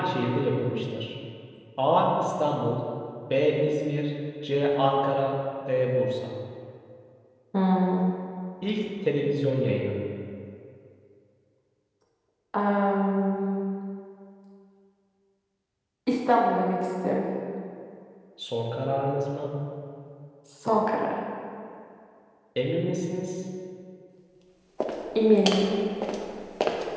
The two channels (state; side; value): identical; both; correlation 1.00